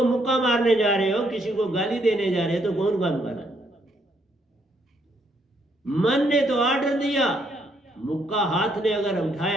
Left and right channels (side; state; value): both; normal; correlation 0.72